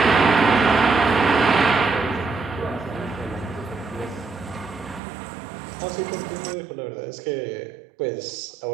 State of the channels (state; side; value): drops out; left; at 5.0 s